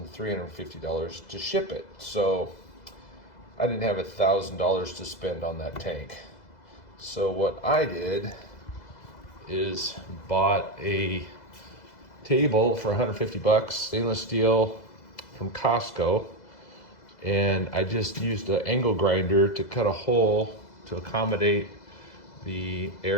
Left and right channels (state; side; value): late; right; 2.0 ms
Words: $350 to ship it. So I didn't have $1,000 to spend on that tank. So what I did is bought a table for 150 bucks, stainless steel from Costco, and I just used an angle grinder to cut a hole to accommodate the